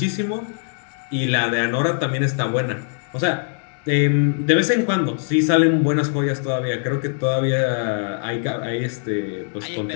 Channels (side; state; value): right; silent; 65 dB below the other